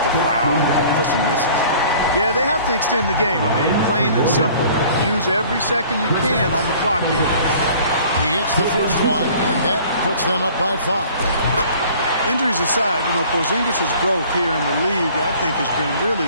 to foul and hope for some misses. Yeah, they have to extend the game. I mean, plain and simple. Use every second you can on the clock here. He hits the first one, and that puts them up by 5. Injuries aside, you know, Porzingis' growth here in the league, I think, has been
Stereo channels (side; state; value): both; inverted; correlation -0.50